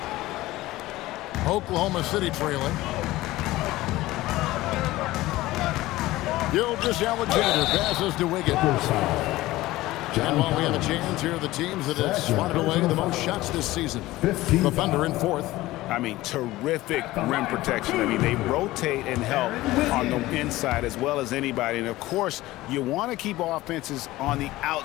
Oklahoma City trailing. Gilgeous-Alexander passes to Wiggins. And while we have a chance, here are the teams that have swatted away the most shots this season. The Thunder in 4th. I mean, terrific rim protection. I mean, they rotate and help on the inside as well as anybody. And, of course, you want to keep offenses on the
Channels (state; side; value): quieter; right; 17.6 dB